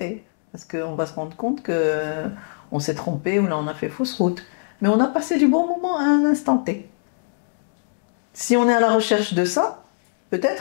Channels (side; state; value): right; silent; digital silence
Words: Parce qu'on va se rendre compte qu'on s'est trompé ou là on a fait fausse route. Mais on a passé du bon moment à un instant T. Si on est à la recherche de ça,